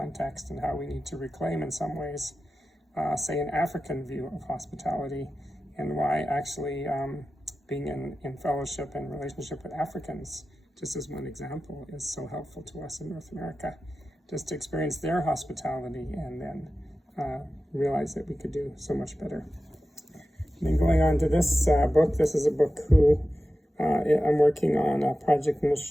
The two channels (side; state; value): both; normal; correlation 0.93